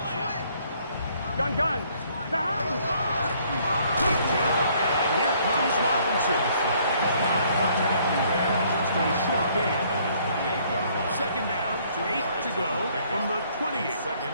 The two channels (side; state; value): both; inverted; correlation -0.63